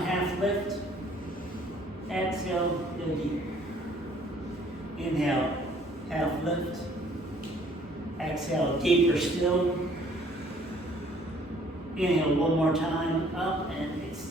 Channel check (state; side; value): normal; both; correlation 0.59